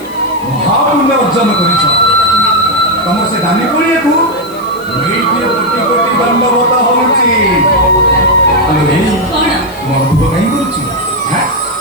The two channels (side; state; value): left; noise; hiss, 22 dB below the sound